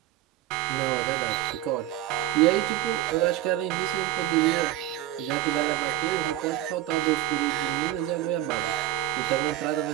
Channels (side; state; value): left; quieter; 13.9 dB